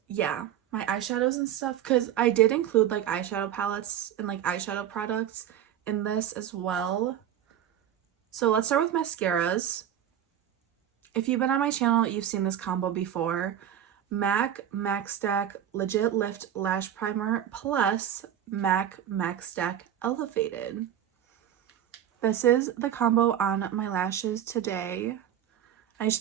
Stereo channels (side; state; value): left; quieter; 10.4 dB